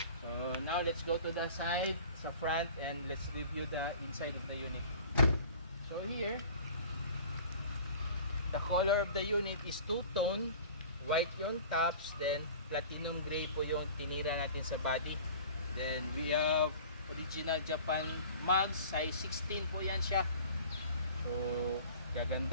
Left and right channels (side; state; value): both; inverted; correlation -0.43